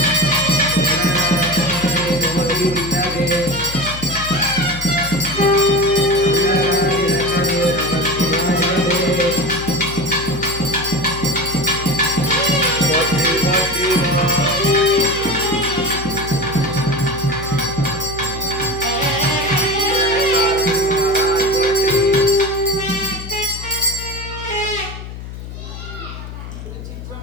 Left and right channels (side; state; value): left; noise; hum, 11 dB below the sound